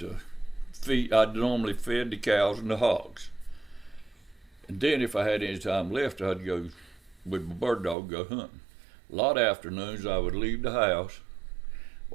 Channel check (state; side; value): drops out; left; at 8.0 s